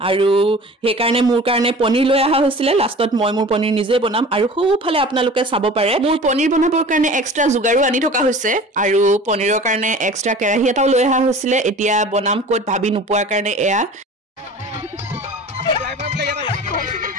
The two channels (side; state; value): both; normal; correlation 0.41